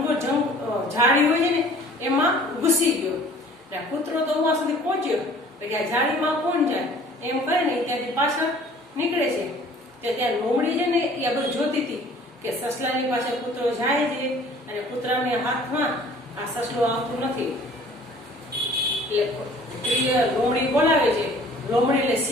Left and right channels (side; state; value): both; normal; correlation 0.51